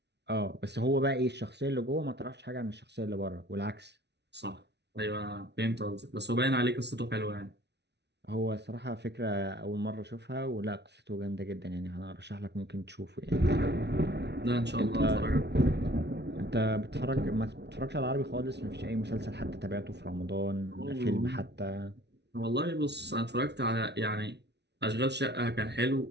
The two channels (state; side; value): late; left; 0.50 ms